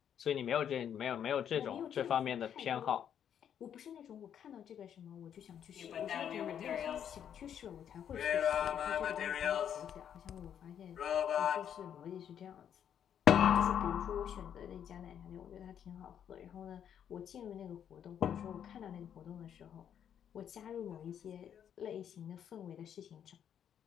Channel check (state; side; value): quieter; right; 9.0 dB